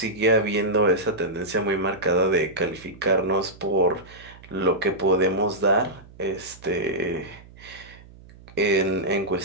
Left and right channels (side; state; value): right; noise; hum, 21 dB below the sound